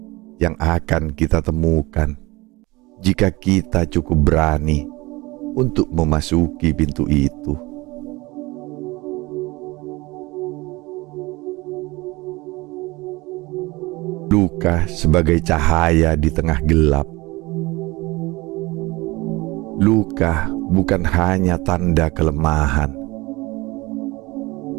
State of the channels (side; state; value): left; quieter; 22.2 dB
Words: yang akan kita temukan jika kita cukup berani untuk memasuki pintu itu. Luka sebagai cahaya di tengah gelap. Luka bukan hanya tanda kelemahan.